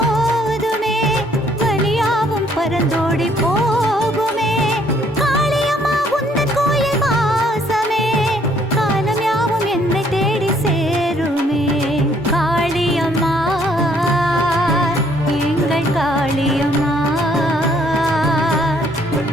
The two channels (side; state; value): both; normal; correlation 0.65